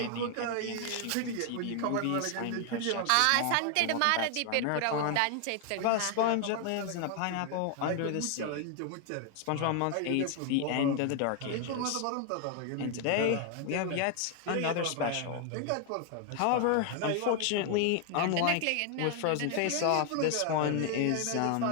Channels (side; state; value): both; different; correlation 0.00